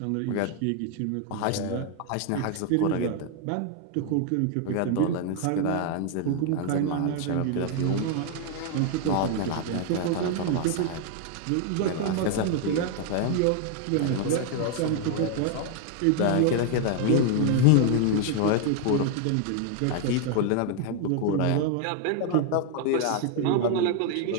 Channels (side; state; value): both; different; correlation 0.01